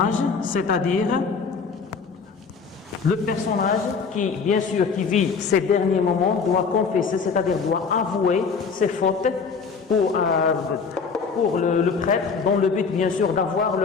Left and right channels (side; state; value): right; quieter; 5.4 dB